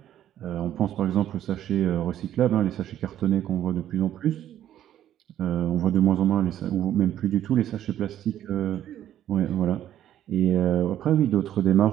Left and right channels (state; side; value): quieter; left; 11.5 dB